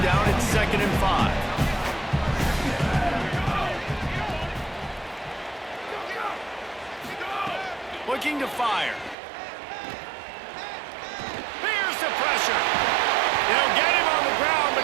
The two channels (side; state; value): left; drops out; at 9.2 s